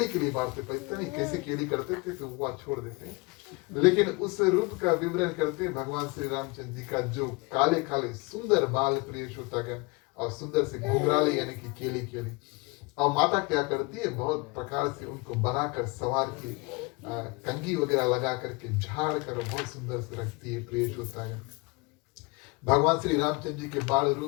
केली बांटते, पता नहीं कैसे केली करते थे, तो वो छोड़ देते हैं। लेकिन उस रूप का विवरण करते हैं भगवान श्री रामचंद्र जी का, जो काले काले सुंदर बाल प्रिय श्रोतागण, और सुंदर से घुंघराले यानी कि केली केली, और माता क्या करती है, बहुत प्रकार से उनको बनाकर सवार के कंघी वगैरह लगा करके झाड़ कर बहुत सुंदर से रखती है प्रिय श्रोतागण। भगवान श्री रामचंद्र जी के बाल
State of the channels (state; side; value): quieter; right; 27.0 dB